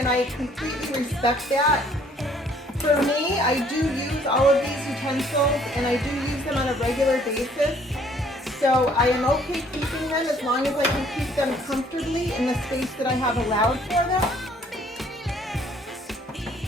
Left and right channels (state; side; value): normal; both; correlation 0.61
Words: I completely respect that. For me, I do use all of these utensils, and I do use them on a regular basis. So I am okay keeping them as long as I can keep them comfortably in the space that I have allowed for them.